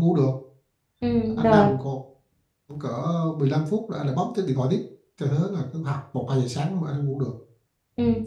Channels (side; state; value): both; identical; correlation 1.00